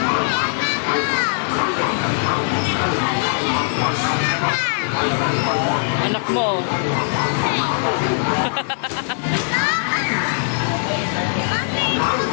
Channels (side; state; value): right; silent; 60 dB below the other